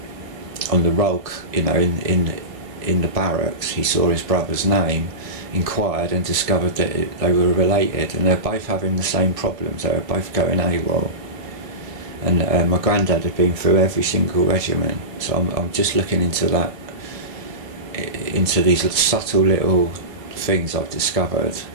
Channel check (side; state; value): left; late; 1.4 ms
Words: roll, in the barracks. He saw his brother's name, inquired, and discovered that they were related, and they're both having the same problems. They were both going AWOL, and my granddad had been through every single regiment. So I'm just looking into that, into these subtle little things I've discovered,